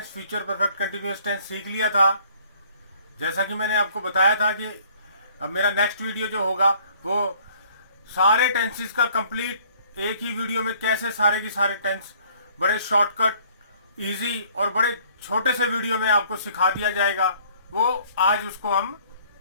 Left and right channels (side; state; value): both; inverted; correlation -0.58